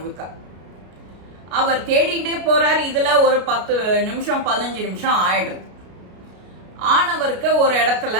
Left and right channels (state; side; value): late; left; 33 ms